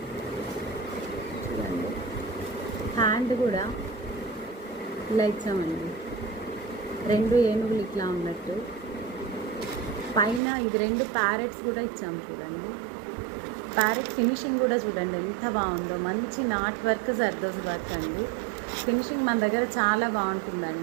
చూడండి, హ్యాండ్ కూడా ఇలా ఇచ్చామండి, 2 ఏనుగులు ఇట్లా ఉన్నట్టు. పైన ఇది 2 ప్యారెట్స్ కూడా ఇచ్చాము. చూడండి, ప్యారెట్ ఫినిషింగ్ కూడా చూడండి ఎంత బాగుందో. మంచి నాట్ వర్క్, జర్దోజీ వర్క్ అండి. ఫినిషింగ్ మన దగ్గర చాలా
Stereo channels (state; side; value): drops out; left; at 10.4 s